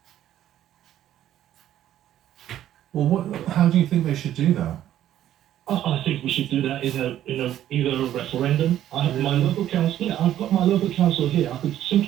Well, how do you think they should do that? I think we should do that in either a referendum. I have my local council. Yeah, I've got my local council here. I could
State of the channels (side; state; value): left; quieter; 11.9 dB